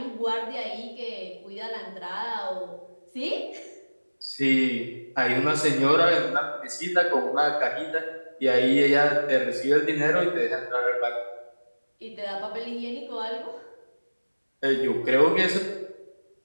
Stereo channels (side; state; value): both; inverted; correlation -1.00